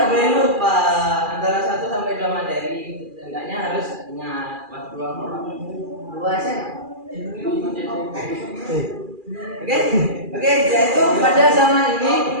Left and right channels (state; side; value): late; left; 2.4 ms